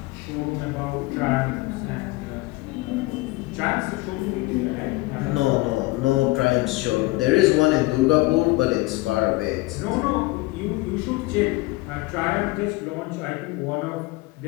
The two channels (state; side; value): quieter; right; 21.4 dB